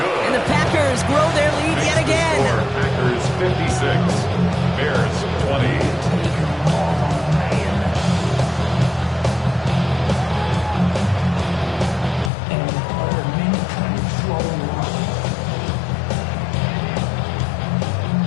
And the Packers grow their lead yet again. Packers 56, Bears 20.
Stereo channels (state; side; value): drops out; right; at 12.3 s